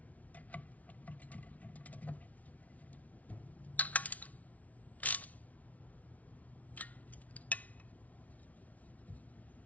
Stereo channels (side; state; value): right; late; 0.070 ms